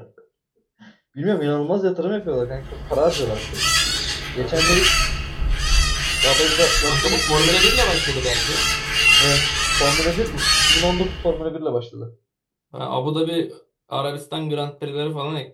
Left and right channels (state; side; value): identical; both; correlation 1.00